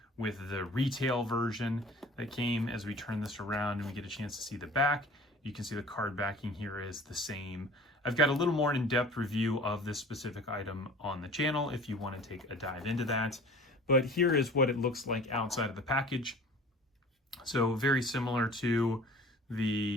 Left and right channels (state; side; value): normal; both; correlation 0.45